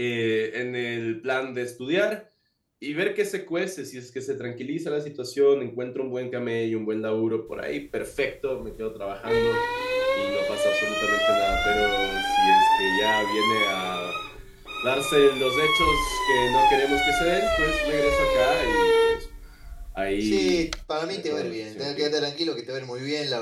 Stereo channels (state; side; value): identical; both; correlation 1.00